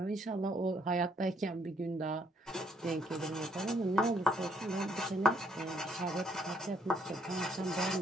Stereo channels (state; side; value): normal; both; correlation 0.69